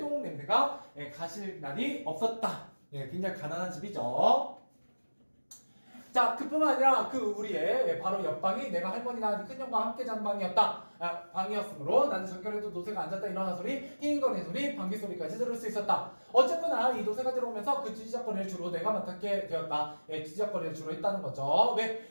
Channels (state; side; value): inverted; both; correlation -1.00